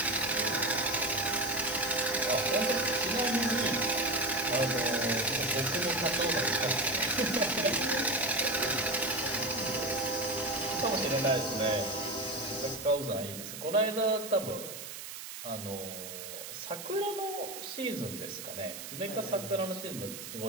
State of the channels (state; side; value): noise; right; hiss, 10 dB below the sound